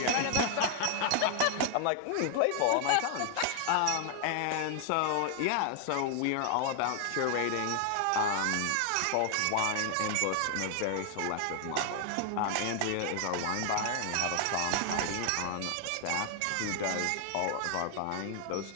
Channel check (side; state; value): both; different; correlation 0.00